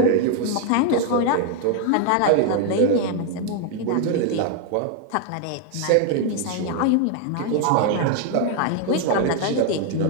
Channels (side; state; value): both; different; correlation 0.00